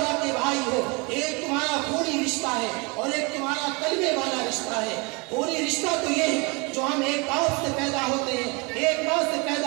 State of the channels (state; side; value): quieter; left; 29.1 dB